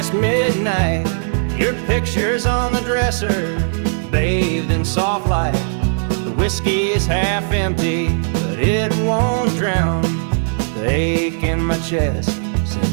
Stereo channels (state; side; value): silent; left; digital silence